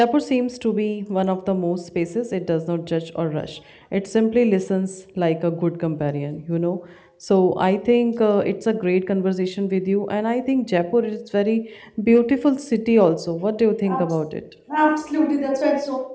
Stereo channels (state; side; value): identical; both; correlation 1.00